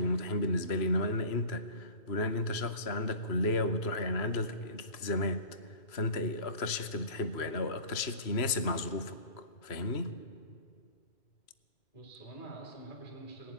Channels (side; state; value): right; late; 3.0 ms